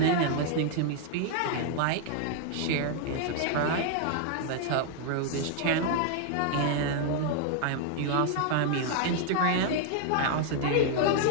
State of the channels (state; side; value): different; both; correlation 0.00